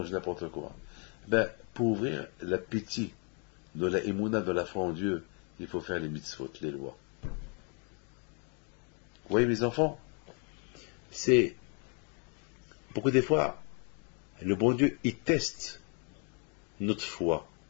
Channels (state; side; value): quieter; right; 37.7 dB